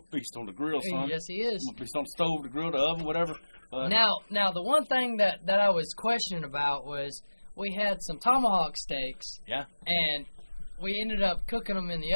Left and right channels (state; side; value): inverted; both; correlation -1.00